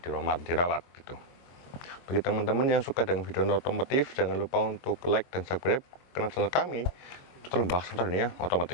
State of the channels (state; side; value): late; right; 23 ms